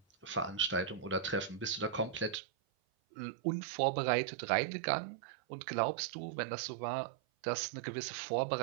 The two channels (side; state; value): left; drops out; at 2.4 s